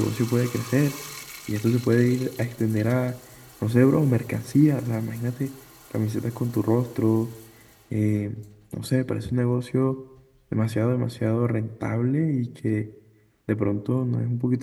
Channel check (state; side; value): identical; both; correlation 1.00